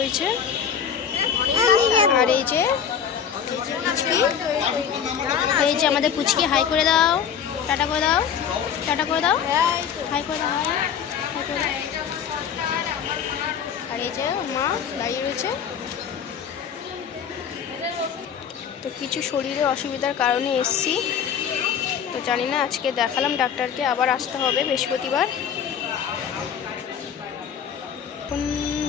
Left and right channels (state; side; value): quieter; right; 7.8 dB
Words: আর এই যে আমাদের পুচকি, হাই করে দাও, টাটা করে দাও, টাটা করে দাও, হাই করে দাও, হাই করে দাও। আর এই যে মা দাঁড়িয়ে রয়েছে। তো কিছু শরীরে অসুবিধার কারণে এসছি, তো জানি না, আজকে দেখালাম ডাক্তারকে, আবার আসতে হবে বৃহস্পতিবার। এখন